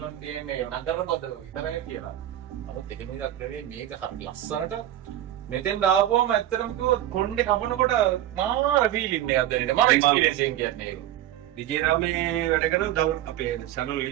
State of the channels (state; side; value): quieter; left; 12.7 dB